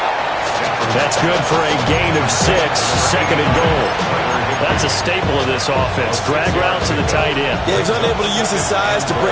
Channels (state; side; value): identical; both; correlation 1.00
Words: That's good for a gain of 6, 2nd and goal. That's a staple of this offense. Drag route to the tight end. Yeah, he's unable to use his size to